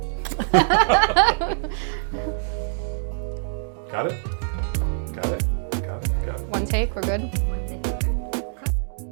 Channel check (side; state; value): left; silent; digital silence